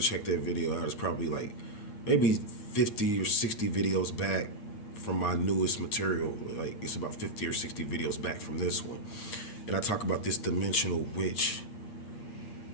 to check that video out. It's probably like maybe 50 or 60 videos back from my newest material. Like it's about 50 or 60 videos back from this one. And I talk about this dimensional witch.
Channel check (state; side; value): late; right; 8.6 ms